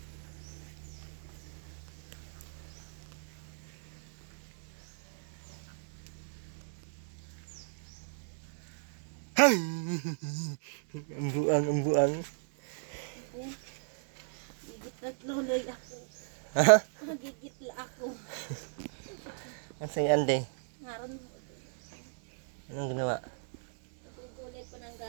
Ay! Ang buang. Gigit na tuloy ako. Ha? Magigit la ako. Ang si Ande. Ngaron mo. Anong ginawa? Natutulay pa ng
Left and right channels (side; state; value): left; silent; digital silence